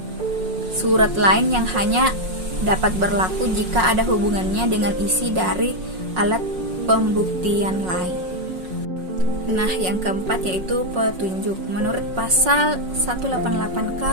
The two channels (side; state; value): left; late; 5.5 ms